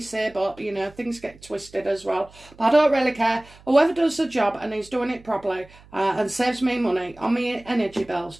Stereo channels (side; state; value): right; noise; hum, 24 dB below the sound